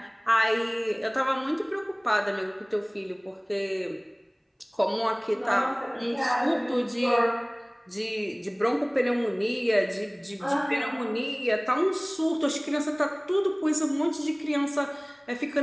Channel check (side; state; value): both; identical; correlation 1.00